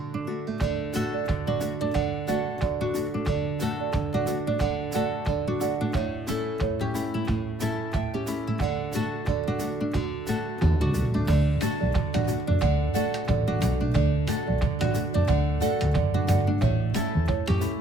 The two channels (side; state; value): both; normal; correlation 0.69